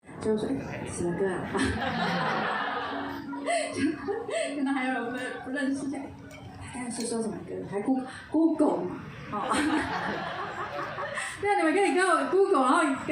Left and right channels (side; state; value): both; identical; correlation 1.00